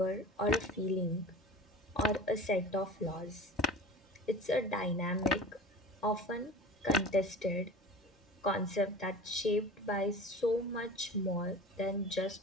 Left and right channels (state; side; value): normal; both; correlation 0.37